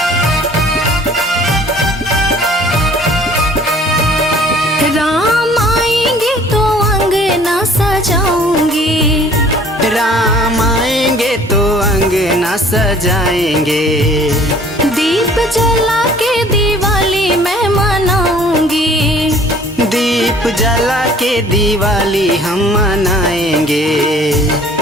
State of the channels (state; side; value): normal; both; correlation 0.53